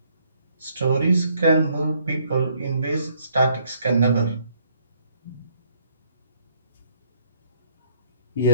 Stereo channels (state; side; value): inverted; both; correlation -0.68